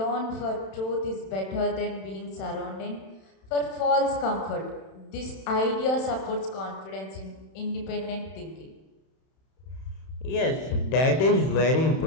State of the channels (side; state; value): right; late; 31 ms